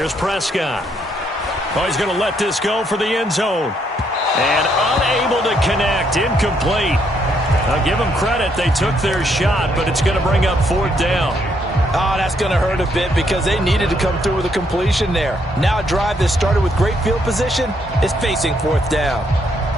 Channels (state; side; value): normal; both; correlation 0.73